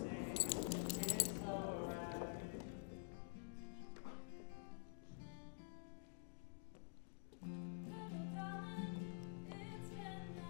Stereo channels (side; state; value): right; silent; digital silence